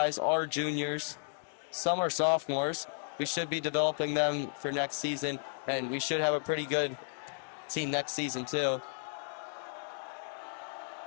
are juniors. Some are sophomores. We should be developing them for next season, and we should have a pretty good team next season too.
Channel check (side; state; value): right; silent; digital silence